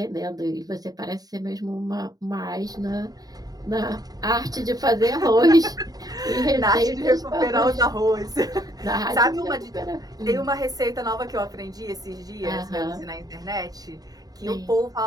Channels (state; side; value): late; left; 0.18 ms